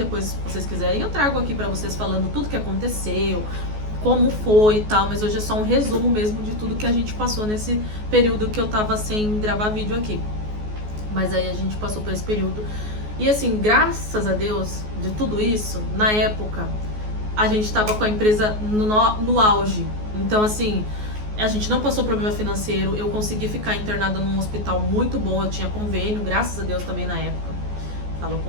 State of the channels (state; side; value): late; left; 14 ms